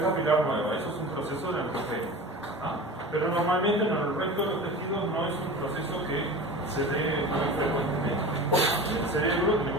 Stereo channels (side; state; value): both; normal; correlation 0.34